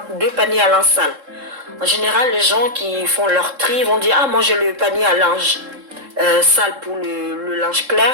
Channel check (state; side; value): late; left; 3.7 ms